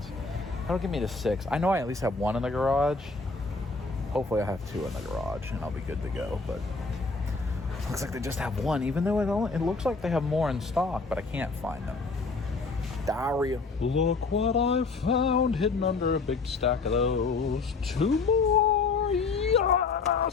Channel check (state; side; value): quieter; right; 4.1 dB